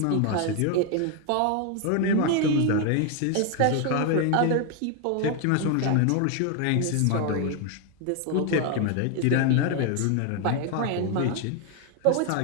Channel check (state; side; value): different; both; correlation 0.01